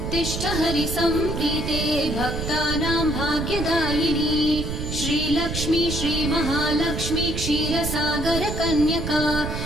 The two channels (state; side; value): noise; right; rumble, 4 dB below the sound